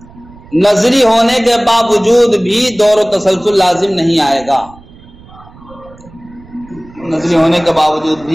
نظری ہونے کے باوجود بھی دور و تسلسل لازم نہیں آئے گا. نظری ہونے کے باوجود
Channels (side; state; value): right; noise; rumble, 22 dB below the sound